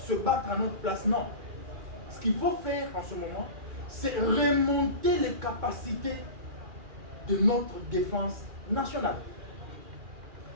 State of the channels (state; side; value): late; left; 2.4 ms